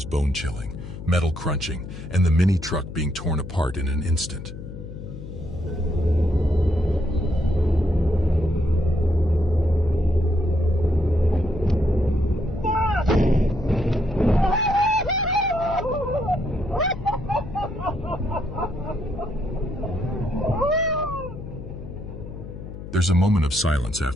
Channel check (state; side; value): noise; left; hum, 11 dB below the sound